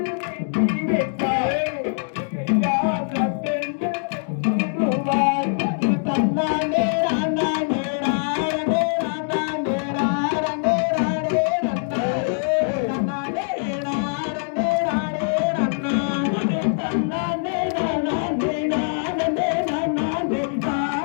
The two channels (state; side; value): silent; right; digital silence